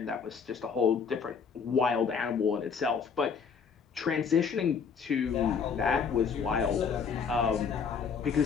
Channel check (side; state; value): right; quieter; 6.2 dB